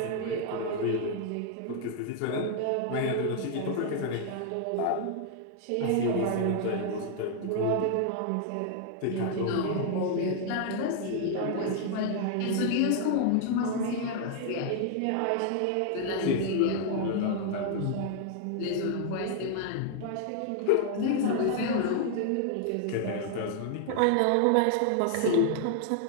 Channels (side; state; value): both; different; correlation 0.00